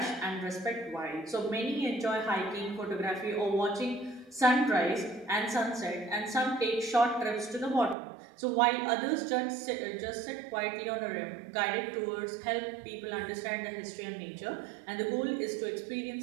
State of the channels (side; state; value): left; drops out; at 8.0 s